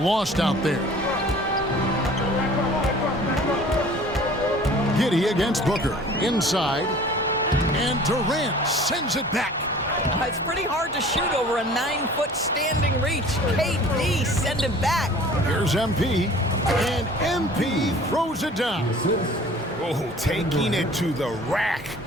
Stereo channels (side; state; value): both; normal; correlation 0.47